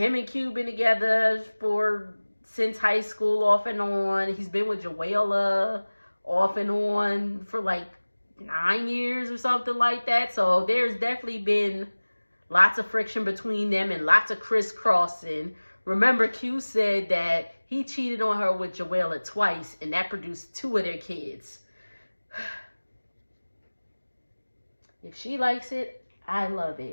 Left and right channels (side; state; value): both; inverted; correlation -1.00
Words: and Q been together since high school, off and on. He's been with Joella off and on for like 9 years or something like that. So there's definitely been lots of friction between them and lots of crisscrossing. Remember, Q said that he cheated on her with Joella twice, and that produced 2 of their kids. If she likes it, I love